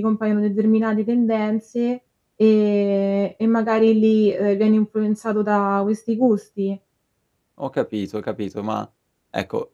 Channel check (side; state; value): both; identical; correlation 1.00